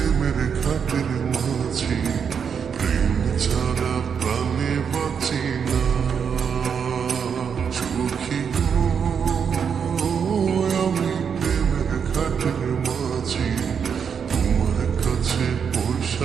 ঘাটের মাঝি, প্রেম ছাড়া প্রাণে বাঁচি না সখী গো। আমি প্রেমের ঘাটের মাঝি, তোমার কাছে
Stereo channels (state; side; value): quieter; left; 6.9 dB